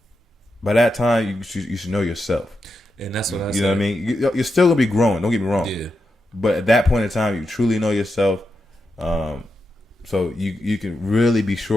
that time, you should know yourself. And that's what I You know what I mean? You're still gonna be growing. Don't get me wrong. Yeah. But at that point in time, you truly know yourself. So you can really be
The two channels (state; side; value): normal; both; correlation 0.87